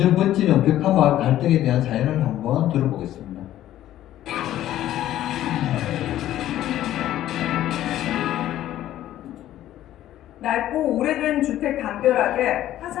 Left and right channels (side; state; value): right; quieter; 13.0 dB